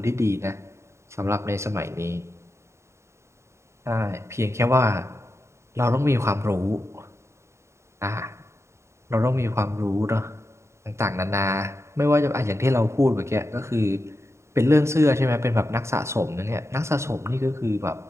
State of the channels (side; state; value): left; late; 0.13 ms